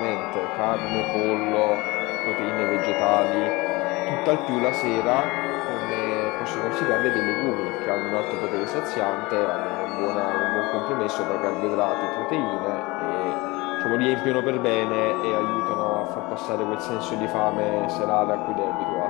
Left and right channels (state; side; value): quieter; right; 22.9 dB